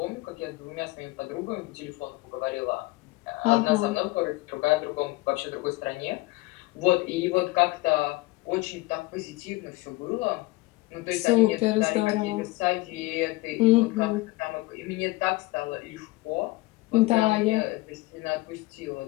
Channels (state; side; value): quieter; right; 21.3 dB